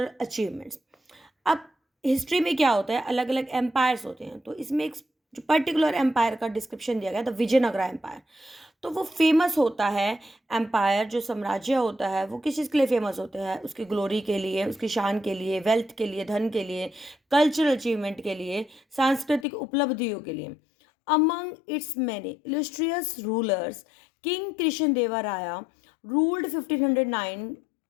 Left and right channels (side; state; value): right; drops out; at 19.5 s